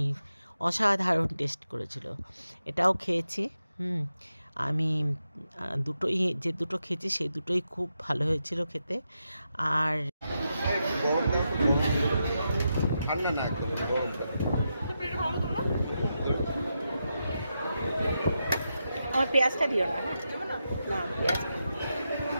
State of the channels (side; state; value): both; inverted; correlation -0.86